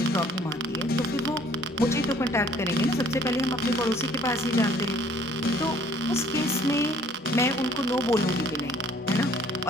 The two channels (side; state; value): both; normal; correlation 0.57